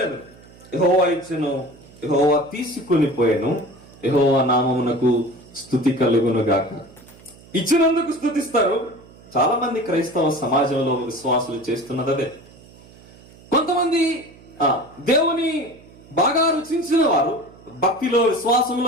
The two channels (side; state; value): right; noise; hum, 23 dB below the sound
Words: యెహోవా ఇచ్చెను, యెహోవా తీసుకొని పోయాను, యెహోవా నామమునకు స్తుతి కలుగును గాక. ఇచ్చినందుకు స్తుతిస్తారు. చాలా మంది క్రైస్తవ సమాజంలో విశ్వాసులు చేస్తున్నది అదే. కొంతమంది దేవుని బాగా రుచించిన వారు, భక్తిలో